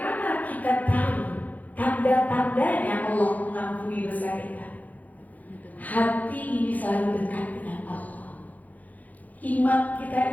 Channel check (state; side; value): late; right; 0.078 ms